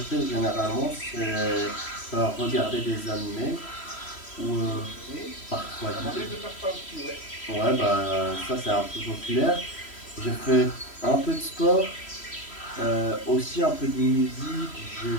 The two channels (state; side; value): late; right; 3.1 ms